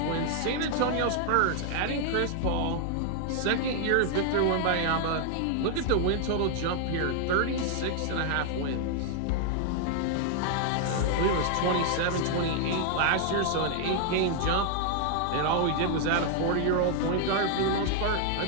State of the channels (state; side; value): different; both; correlation 0.00